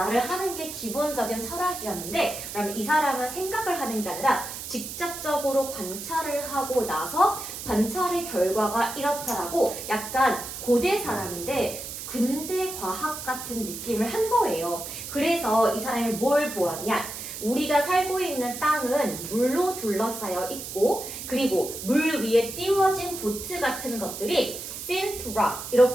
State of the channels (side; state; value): right; noise; hiss, 8 dB below the sound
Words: 하는 게 기본적인 철학이었는데 그러면 이 사람은 생각을 하는 게 아니라 직접적으로 관찰을 하고 나서 관찰의 결과가 이렇다라고 약간 고대 사람인데 근대 과학 같은 느낌을 한 거예요. 그래서 이 사람이 뭘 보았냐? 우리가 살고 있는 땅은 물로 둘러싸여 있고 그리고 물 위에 띄워진 보트 같은 것들이 seen to rock